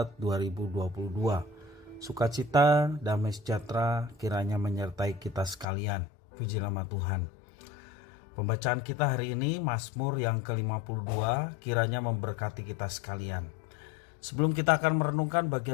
2022. Sukacita, damai sejahtera kiranya menyertai kita sekalian. Puji nama Tuhan. Pembacaan kita hari ini Mazmur yang ke-52 kiranya memberkati kita sekalian. Sebelum kita akan merenungkan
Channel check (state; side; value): drops out; right; at 5.7 s